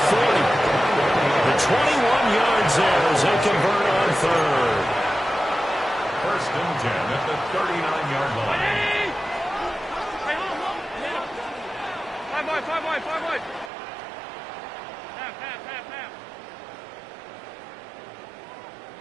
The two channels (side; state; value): left; drops out; at 13.7 s